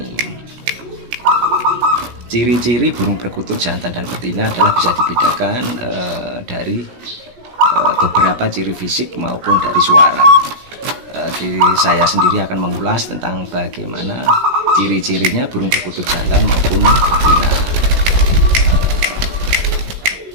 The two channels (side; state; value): left; late; 17 ms